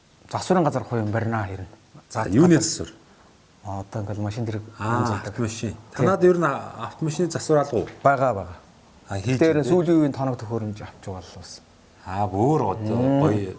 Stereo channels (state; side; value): identical; both; correlation 1.00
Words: засварын газар хувийн барина хэрнэ. за юуны засвар Одоо ингээл машин дэрэг автомашин танад ер нь автомашины засвар алга уу байгаа. хийж Тэр сүүлийн үеийн тоног төхөөрөмж авч байгаа л бас. бүр гоё